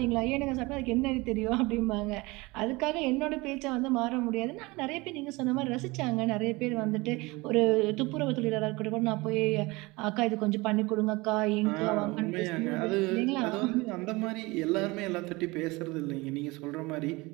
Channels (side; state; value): left; quieter; 23.3 dB